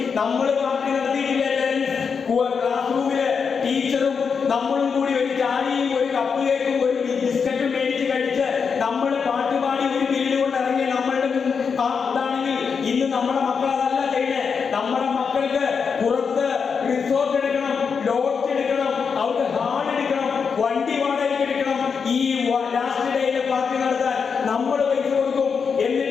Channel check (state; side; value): quieter; right; 5.9 dB